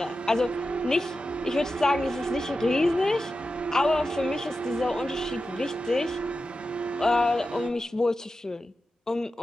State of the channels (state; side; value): normal; both; correlation 0.91